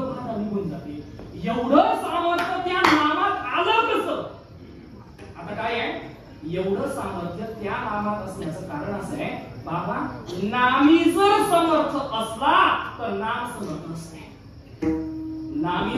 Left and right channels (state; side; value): identical; both; correlation 1.00